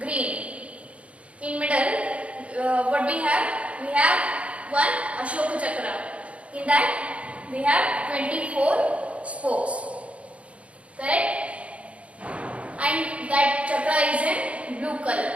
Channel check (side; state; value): left; late; 0.063 ms